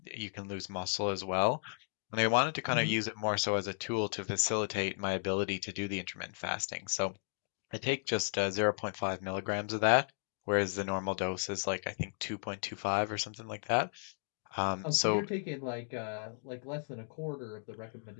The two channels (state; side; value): silent; right; digital silence